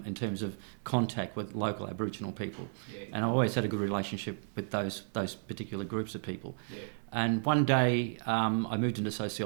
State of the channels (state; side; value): silent; left; 56 dB below the other